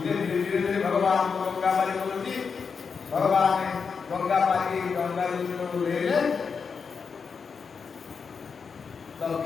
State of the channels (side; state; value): right; quieter; 5.7 dB